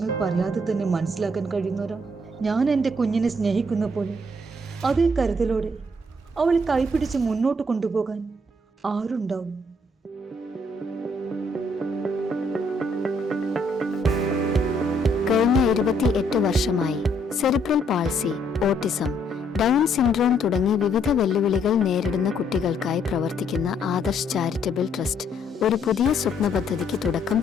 പറയാതെ തന്നെ മനസ്സിലാക്കാൻ കഴിയുന്നവരാ ഞാൻ എൻ്റെ കുഞ്ഞിനെ സ്നേഹിക്കുന്ന പോലെ അതേ കരുതലോടെ അവളെ കൈപിടിച്ച് മുന്നോട്ട് കൊണ്ടുപോകാൻ ആരുണ്ടാവും? കഴിഞ്ഞ 28 വർഷമായി cerebral palsy, autism, down syndrome തുടങ്ങി വിവിധ വെല്ലുവിളികൾ നേരിടുന്ന കുട്ടികൾക്കായി പ്രവർത്തിക്കുന്ന ആദർശ് ചാരിറ്റബിൾ ട്രസ്റ്റ് ഒരു പുതിയ സ്വപ്ന പദ്ധതിക്ക് തുടക്കം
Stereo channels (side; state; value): both; normal; correlation 0.69